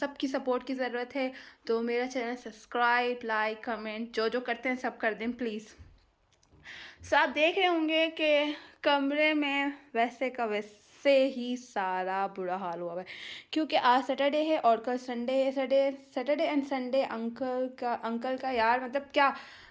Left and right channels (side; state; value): both; identical; correlation 1.00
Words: सपोर्ट की ज़रूरत है। तो मेरा चैनल सब्सक्राइब, लाइक, कमेंट जो जो करते हैं सब कर दें प्लीज़। सो आप देख रहे होंगे कि कमरे में वैसे का वैसे ही सारा बुरा हाल हुआ है क्योंकि आज सैटरडे है और कल संडे है। सैटरडे एंड संडे अंकल का यार मतलब क्या